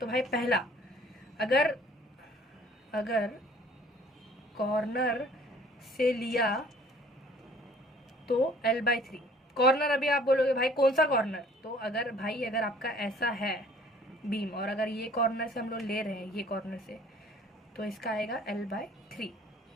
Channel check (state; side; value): normal; both; correlation 0.54